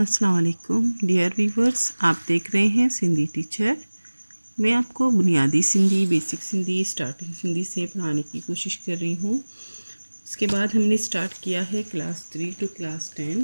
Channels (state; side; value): inverted; both; correlation -1.00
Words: वालेकुम dear viewers, आप देख रहे हैं सिंधी टीचर। मैं आपको बुनियादी सिंधी, बेसिक सिंधी, स्टार्टिंग सिंधी से पढ़ाने की कोशिश कर रही हूँ। इसके बाद हमने स्टार्ट किया है क्लास 3 टू क्लास